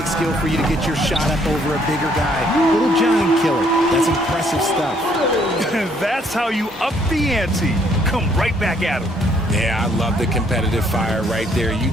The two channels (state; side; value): normal; both; correlation 0.66